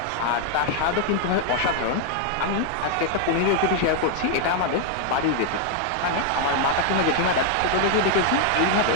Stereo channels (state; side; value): different; both; correlation 0.00